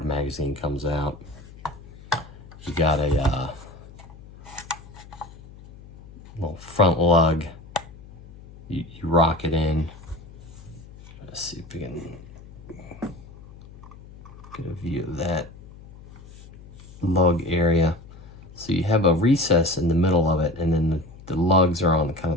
magazine comes out. You got a little front lug. You rock it in. Let's see if we can get a view of that lug area. So you have a recess in the middle of it, and then the lugs are on kind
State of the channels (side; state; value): left; noise; hum, 19 dB below the sound